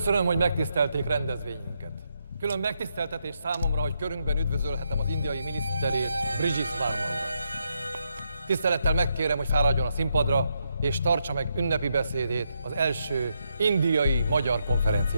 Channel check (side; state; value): both; inverted; correlation -0.80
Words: hogy megtisztelték rendezvényünket. Külön megtiszteltetés számomra, hogy körünkben üdvözölhetem az indiai miniszterét, Brigitte Varman. Tisztelettel megkérem, hogy fáradjon a színpadra, és tartsa meg ünnepi beszédét az első indiai-magyar